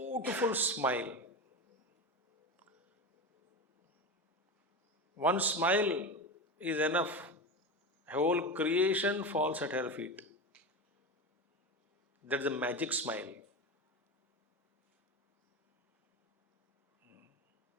smile. One smile is enough. Whole creation falls at her feet. That's a magic smile.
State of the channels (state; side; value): normal; both; correlation 0.22